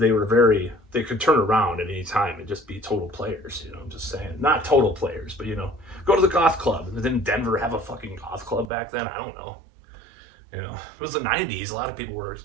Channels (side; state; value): left; drops out; at 8.7 s